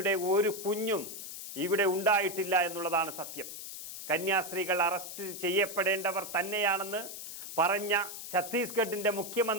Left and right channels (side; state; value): left; noise; hiss, 9 dB below the sound